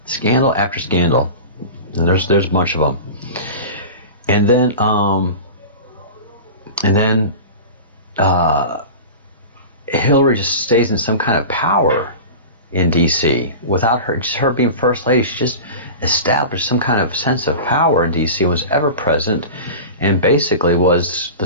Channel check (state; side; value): inverted; both; correlation -0.32